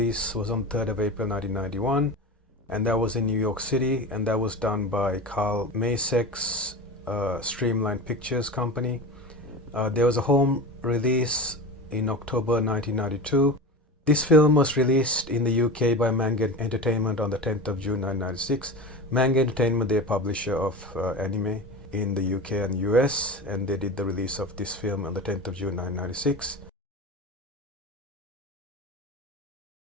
was on 3rd of April 1991, and that was in New York City, and that was done by Carl Masek's Streamline Pictures company. There was a home release in October 1992. This film was released in the UK by Manga Entertainment on the 10th of June 1996. Manga Entertainment, they're a publisher of anime in the UK and US, and they did the release of this film on the 10th of June 1996.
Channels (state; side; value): normal; both; correlation 0.28